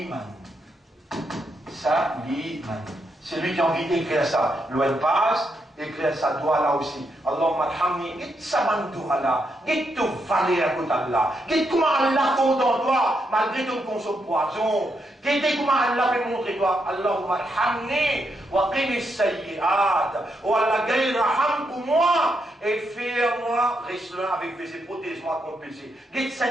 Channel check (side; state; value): both; normal; correlation 0.81